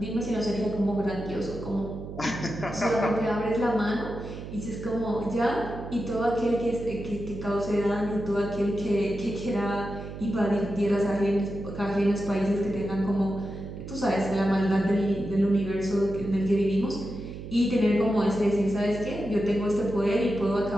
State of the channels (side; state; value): right; noise; hum, 10 dB below the sound